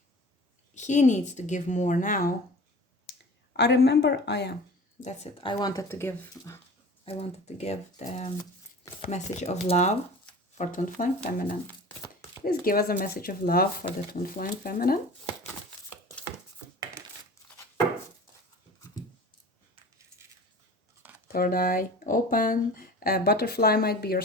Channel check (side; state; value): both; normal; correlation 0.40